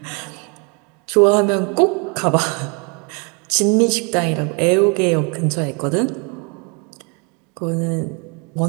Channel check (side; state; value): left; quieter; 33.2 dB